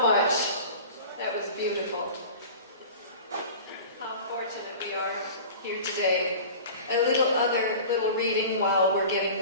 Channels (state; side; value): inverted; both; correlation -0.38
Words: That was beautiful. How fortunate we are here today. A little reading while we're getting